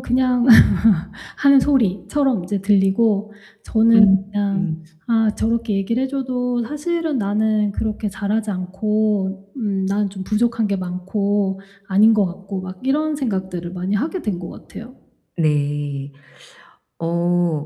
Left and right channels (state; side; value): identical; both; correlation 1.00